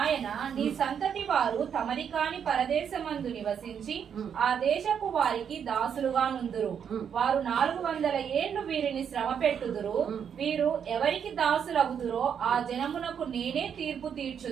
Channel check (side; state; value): left; quieter; 7.8 dB